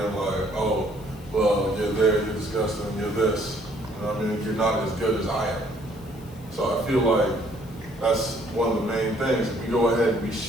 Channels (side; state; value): left; noise; hiss, 25 dB below the sound